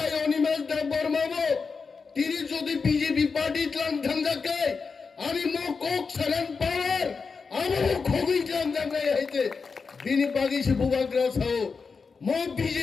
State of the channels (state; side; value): quieter; right; 5.0 dB